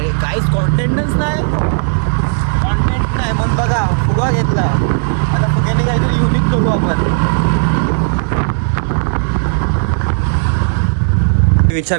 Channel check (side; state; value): left; silent; digital silence